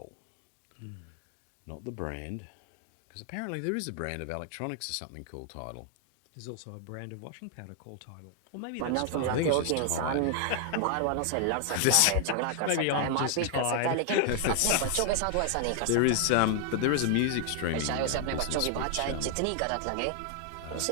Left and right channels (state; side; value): different; both; correlation 0.00